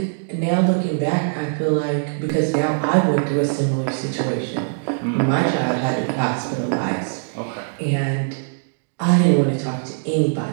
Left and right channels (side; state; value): left; silent; digital silence